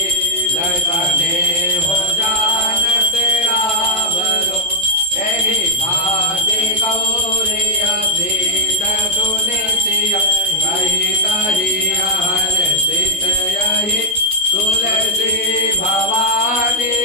लसने हो जानत रावरो एहि भाति गौरी अभीत सुनितिया कही कही हर सित यही तुलसी भवानी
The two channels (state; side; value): normal; both; correlation -0.04